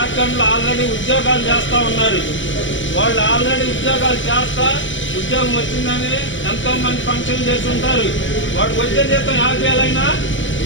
లో ఆల్రెడీ ఉద్యోగాలు చేస్తా ఉన్నారు. వాళ్ళు ఆల్రెడీ ఉద్యోగాలు చేస్తా ఉద్యోగం వచ్చిందని ఎంతో మంది ఫంక్షన్ చేసి ఉంటారు. వాడికి వచ్చే జీతం 50,000 అయినా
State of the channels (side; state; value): right; late; 0.55 ms